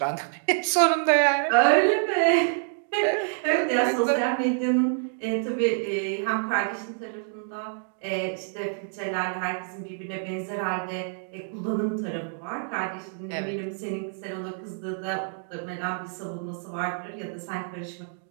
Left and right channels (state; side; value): silent; left; 60 dB below the other